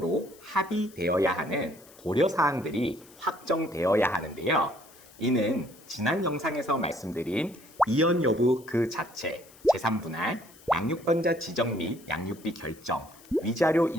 합의되어야 하는 고려사항들이 확정되어야 하는데요. 이는 지난 영상에서 말씀드린 이혼 여부 그 자체, 제3분할, 양육권자 지정 및 양육비 결정, 위자료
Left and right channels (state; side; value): noise; left; hiss, 24 dB below the sound